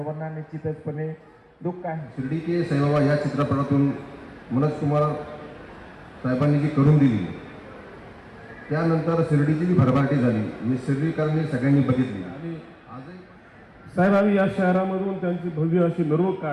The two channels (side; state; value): both; identical; correlation 1.00